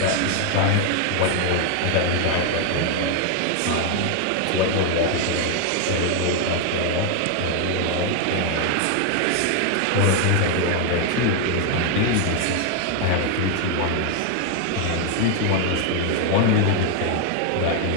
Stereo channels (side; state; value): both; different; correlation 0.01